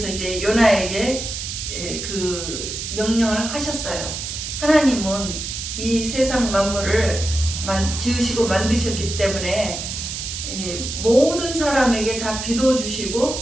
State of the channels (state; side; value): noise; right; hiss, 6 dB below the sound